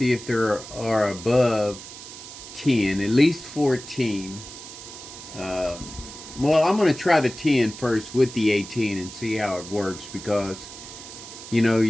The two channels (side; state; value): right; noise; hiss, 14 dB below the sound